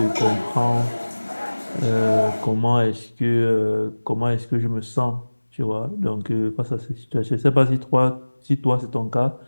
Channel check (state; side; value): inverted; both; correlation -1.00